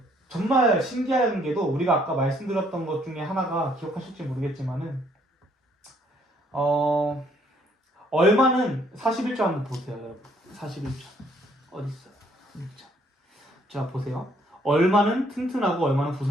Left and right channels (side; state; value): both; normal; correlation 0.66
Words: 정말 신기한 게도 우리가 아까 말씀드렸던 것 중에 하나가 기억하실지 모르겠지만은 얼마는 41조 한번 보세요, 여러분. 41조 어디 있어요? 1조. 자 보세요. 얼마는 튼튼하고 얼마는